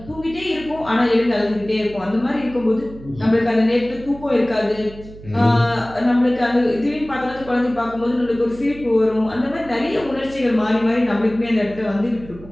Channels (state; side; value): noise; right; hum, 17 dB below the sound